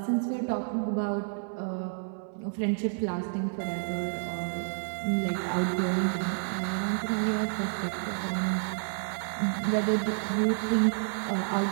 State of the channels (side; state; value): left; silent; 58 dB below the other